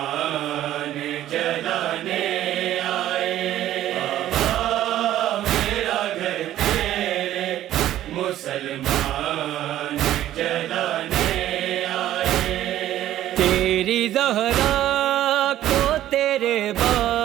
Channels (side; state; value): left; quieter; 13.0 dB